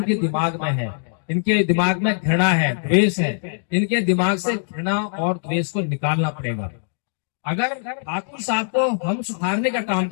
दिमाग में है, इनके दिमाग में घृणा है, द्वेष है। इनके दिमाग से घृणा और द्वेष को निकालना पड़ेगा। अगर ठाकुर साहब को हम सुधारने का काम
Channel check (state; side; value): silent; right; digital silence